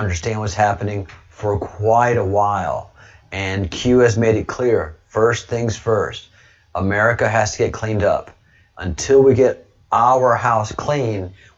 what's happening for quite a while. And Q has made it clear, first things first, America has to get cleaned up. Until we get our house clean,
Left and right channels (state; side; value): identical; both; correlation 1.00